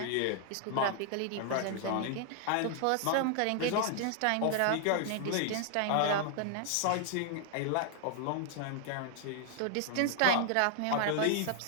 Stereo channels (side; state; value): both; different; correlation 0.00